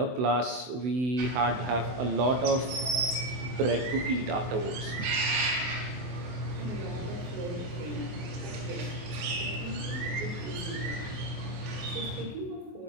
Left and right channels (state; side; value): late; left; 24 ms